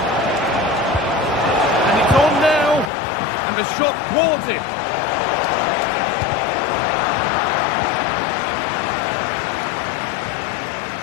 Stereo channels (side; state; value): right; drops out; at 2.9 s